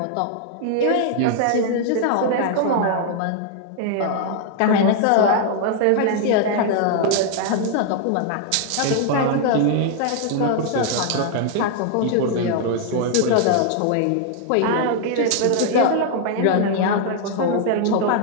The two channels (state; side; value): different; both; correlation 0.00